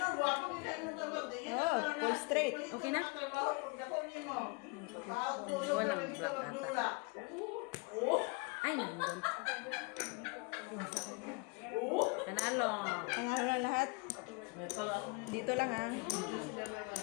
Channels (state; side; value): quieter; right; 29.8 dB